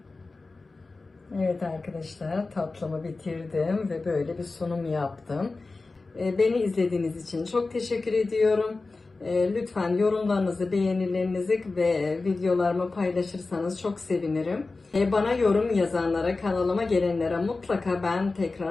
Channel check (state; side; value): quieter; right; 3.6 dB